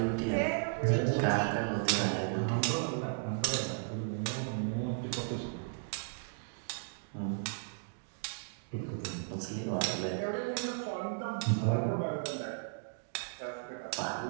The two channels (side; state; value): left; silent; digital silence